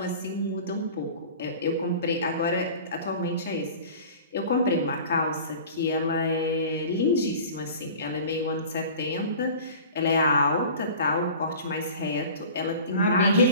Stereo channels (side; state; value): both; inverted; correlation -0.41